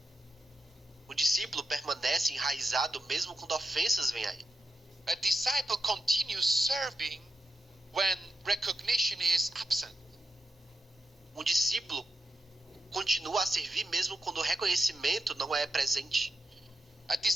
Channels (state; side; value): normal; both; correlation 0.88